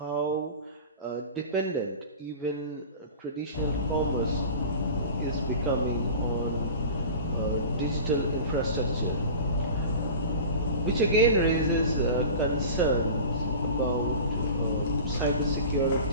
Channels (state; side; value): inverted; both; correlation -0.35